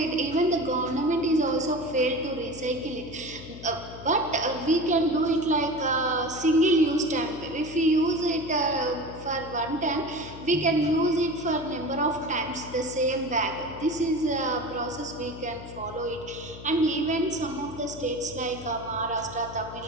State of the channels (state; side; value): noise; left; hum, 14 dB below the sound